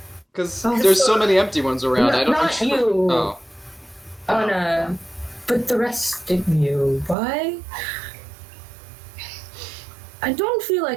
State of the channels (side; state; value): left; drops out; at 7.2 s